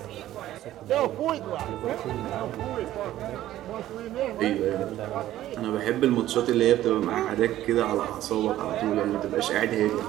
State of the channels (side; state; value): left; quieter; 13.7 dB